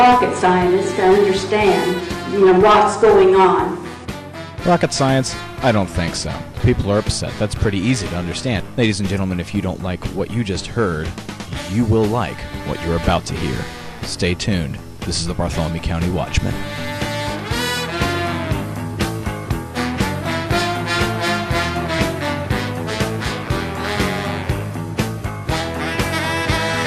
scientist to understand, what's going on. Rocket science? I don't think so. People are upset. That's pretty easy to understand. Ladies and gentlemen, if you don't like what you just heard, you will like what you're about to hear. Stay tuned. This is the Bartholomew County Watchman.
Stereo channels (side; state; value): both; identical; correlation 1.00